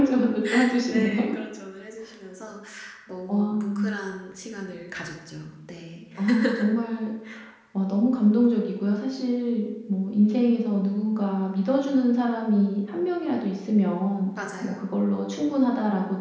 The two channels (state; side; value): identical; both; correlation 1.00